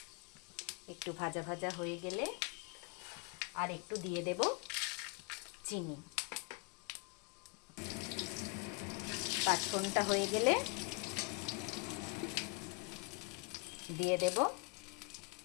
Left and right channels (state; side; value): quieter; right; 31.0 dB